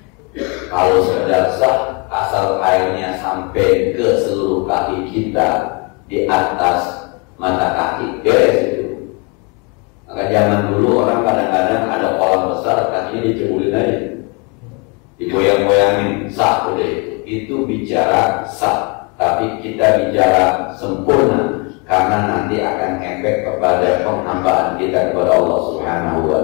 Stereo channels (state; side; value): quieter; right; 32.0 dB